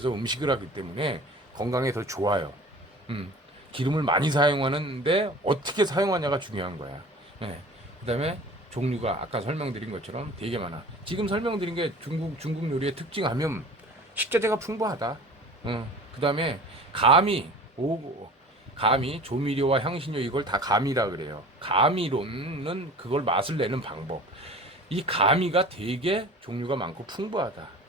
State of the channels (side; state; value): both; normal; correlation 0.41